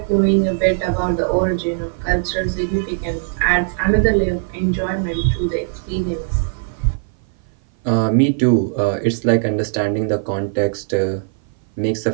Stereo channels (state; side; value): silent; left; 58 dB below the other